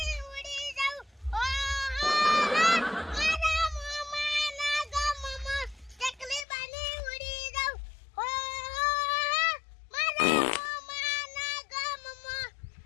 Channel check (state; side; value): drops out; right; at 6.5 s